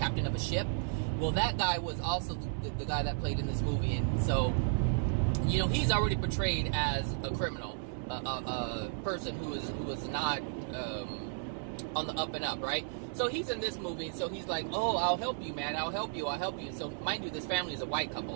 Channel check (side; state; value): left; silent; digital silence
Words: of a ship. Well, that guy was also the guy that played in this movie, and so, you know, he's already portrayed as a criminal, a person who was not on the up and up, right? So he's in this movie, so he's like, oh, I'll help you, man, I'll help you. So, mind you, this family is a white